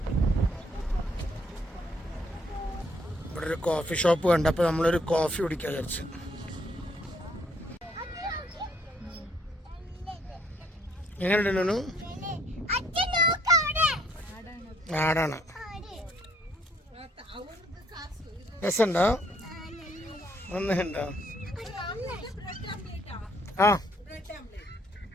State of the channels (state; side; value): normal; both; correlation 0.66